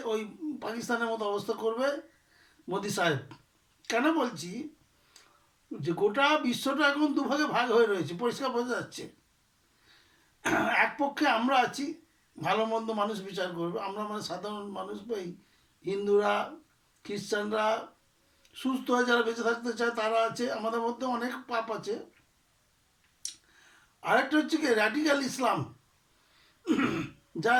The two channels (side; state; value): both; identical; correlation 1.00